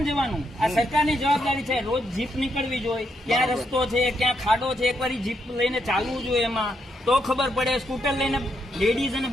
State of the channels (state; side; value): normal; both; correlation 0.78